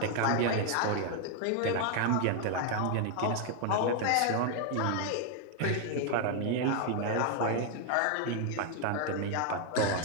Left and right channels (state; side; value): different; both; correlation 0.00